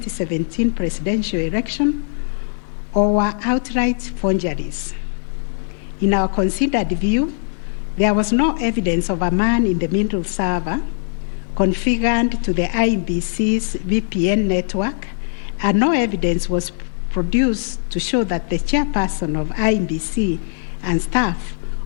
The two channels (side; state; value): right; silent; digital silence